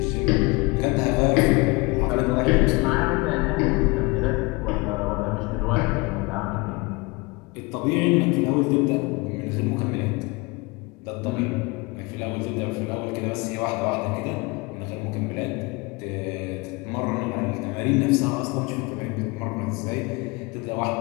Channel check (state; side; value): quieter; right; 26.1 dB